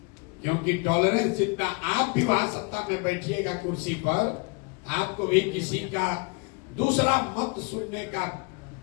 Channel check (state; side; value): quieter; right; 30.8 dB